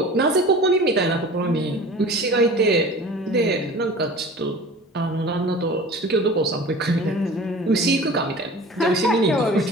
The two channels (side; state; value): both; normal; correlation 0.40